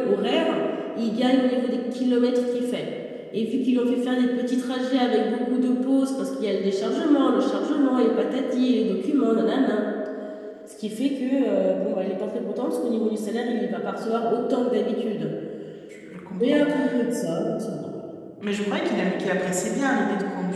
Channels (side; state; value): both; identical; correlation 1.00